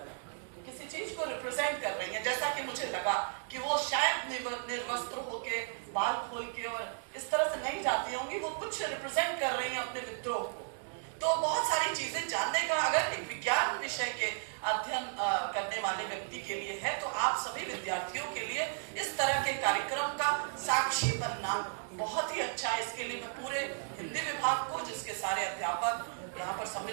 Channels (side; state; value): left; silent; digital silence